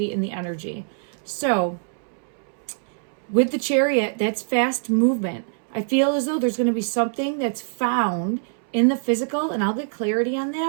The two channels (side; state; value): left; silent; 63 dB below the other